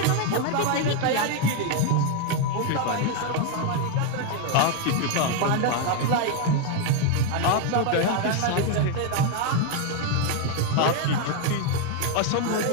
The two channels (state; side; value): different; both; correlation 0.01